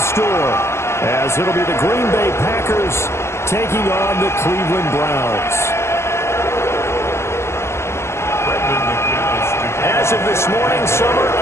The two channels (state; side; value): late; right; 0.13 ms